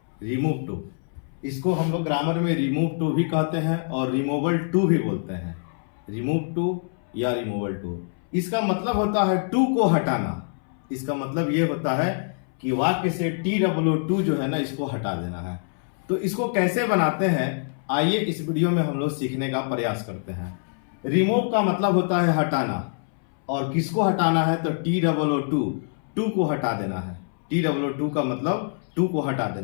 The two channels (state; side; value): silent; right; 62 dB below the other